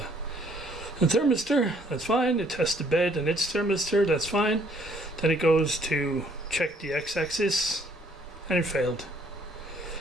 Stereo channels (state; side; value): normal; both; correlation 0.64